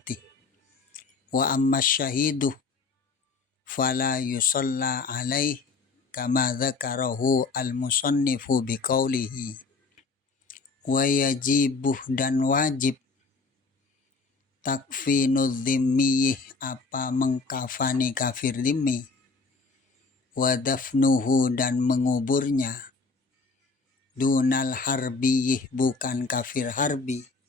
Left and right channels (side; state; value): right; quieter; 4.2 dB